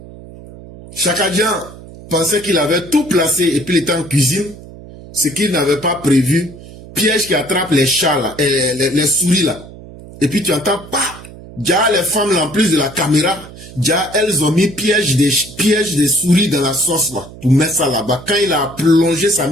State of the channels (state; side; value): noise; right; hum, 17 dB below the sound